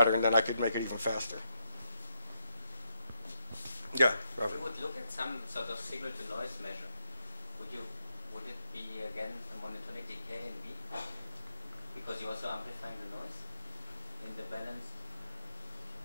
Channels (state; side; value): inverted; both; correlation -0.80